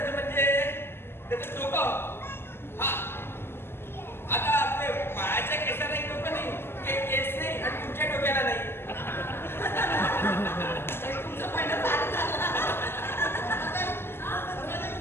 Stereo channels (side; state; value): right; late; 0.12 ms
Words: म्हणजे त्याचं डोकं. हा आता आपले बाळाच्या केसाला एक डोकं नाही केस नाही आणि तुमच्या डोक्याला नाही. तुमचं म्हणणं फार झालं.